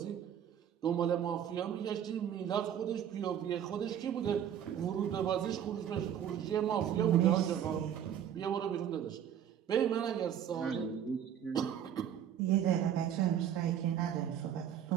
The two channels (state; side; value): quieter; left; 9.5 dB